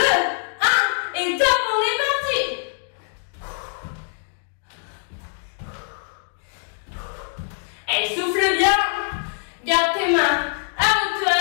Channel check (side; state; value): right; silent; 62 dB below the other